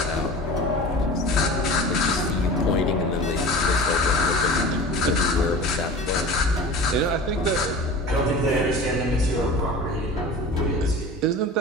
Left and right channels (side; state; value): both; normal; correlation 0.36